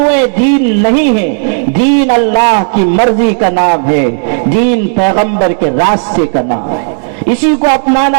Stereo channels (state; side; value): silent; left; digital silence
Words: دین نہیں ہیں۔ دین اللہ کی مرضی کا نام ہے، دین پیغمبر کے راستے کا نام ہے، اسی کو